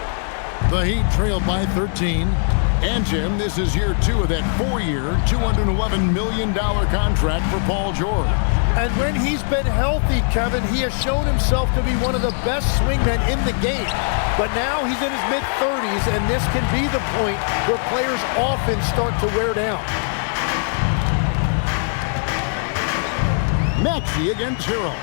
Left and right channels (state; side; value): silent; right; digital silence